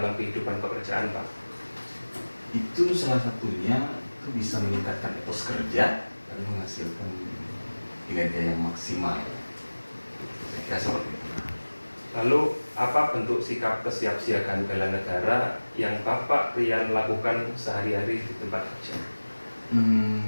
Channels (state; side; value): inverted; both; correlation -1.00